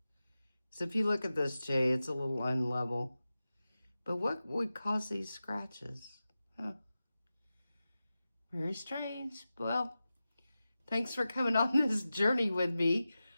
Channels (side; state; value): both; inverted; correlation -0.94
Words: So if you look at this J, it's a little unlevel. But what would cause these scratches? Huh. Very strange. Well, thanks for coming on this journey with me.